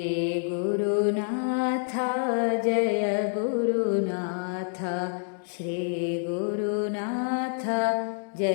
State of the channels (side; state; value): right; silent; digital silence